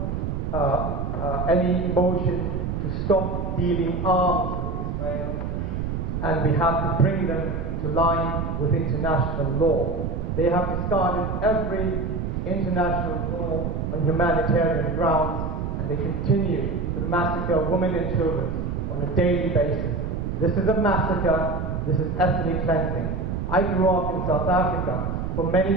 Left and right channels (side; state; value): right; noise; rumble, 3 dB below the sound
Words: any motion to stop dealing arms with Israel, and we have to bring them into line with international law. They have discarded every international law on humanitarian grounds, and they continue to massacre women and children on a daily basis. This is a massacre. This is ethnic cleansing. I grew up in South Africa for